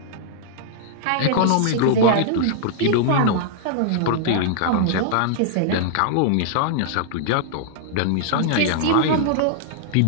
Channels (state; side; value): different; both; correlation -0.01